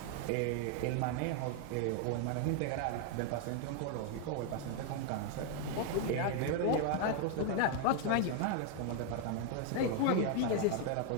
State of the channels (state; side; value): different; both; correlation 0.00